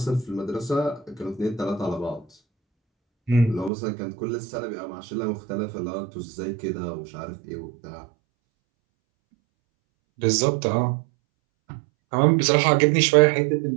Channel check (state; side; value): drops out; left; at 3.7 s